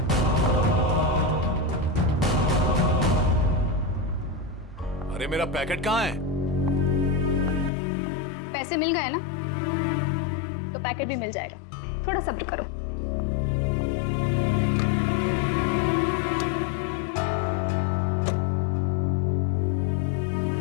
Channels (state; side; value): drops out; right; at 7.7 s